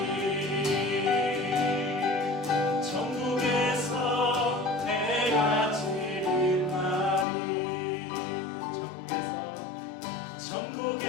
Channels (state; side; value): drops out; right; at 7.2 s